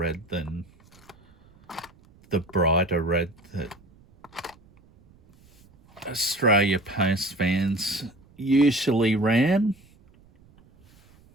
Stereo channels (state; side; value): noise; right; rumble, 28 dB below the sound